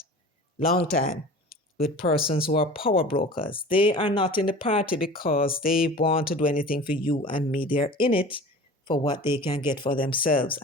long time with persons who are power brokers. They are not in the party because they want to do anything for you and me. They're in it for what they can get for themselves.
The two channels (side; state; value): both; normal; correlation 0.39